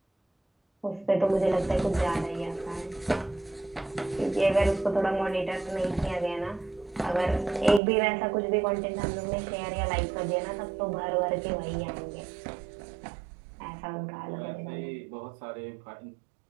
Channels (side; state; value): left; drops out; at 7.8 s